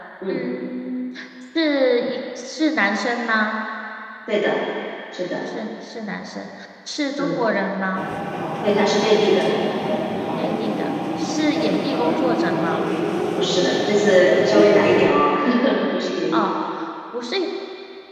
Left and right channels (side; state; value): both; identical; correlation 1.00